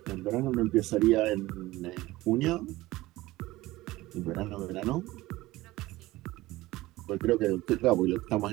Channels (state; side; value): quieter; left; 18.3 dB